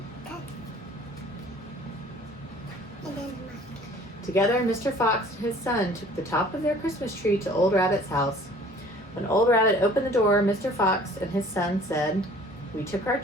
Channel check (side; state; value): both; normal; correlation 0.51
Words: cut. And then the monkey. Together, Mr. Fox and his son took the top of their Christmas tree to Old Rabbit's house. When Old Rabbit opened the door, Mr. Fox and his son said, We took our